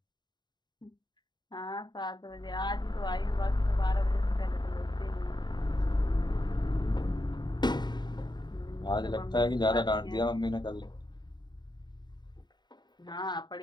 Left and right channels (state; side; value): late; right; 0.21 ms